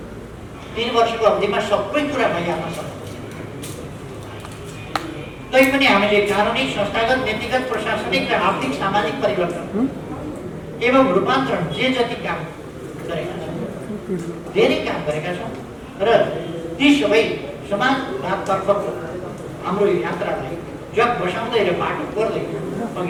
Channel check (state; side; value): identical; both; correlation 1.00